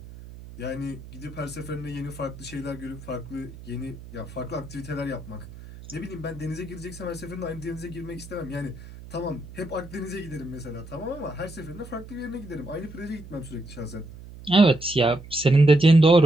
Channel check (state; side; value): noise; right; hum, 15 dB below the sound